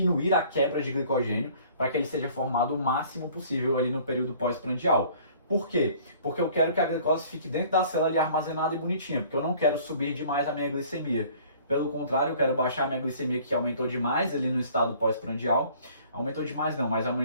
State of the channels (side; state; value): both; inverted; correlation -0.53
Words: a quebra de glicogênio para que ele seja formado o máximo possível ali no período pós-prandial. Por quê? Porque eu quero que a glicose fique dentro da célula ali armazenada e bonitinha, porque eu não quero subir demais a minha glicemia. Pelo contrário, eu quero baixar a minha glicemia, que aumentou demais ali no estado pós-prandial. Aumentou demais não, mas